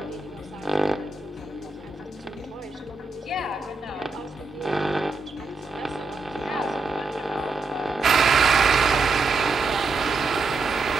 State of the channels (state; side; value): quieter; left; 3.9 dB